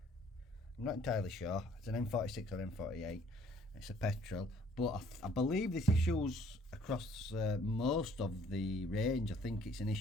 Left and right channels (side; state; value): both; normal; correlation 0.59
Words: I'm not entirely sure. It's an N46 or N48. It's a petrol, but I believe this issues across most of the range. I think it's an